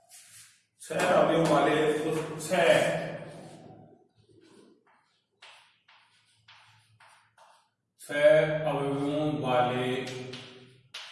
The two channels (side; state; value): both; identical; correlation 1.00